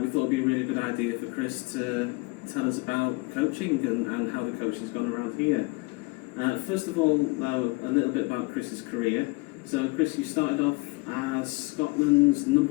we thought it would be a really good idea for Chris to tell us about coaching and how the coaching's gone around here. First of all, though, a little bit about Chris's career. So, Chris, you started off as Scotland's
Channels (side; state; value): right; quieter; 25.7 dB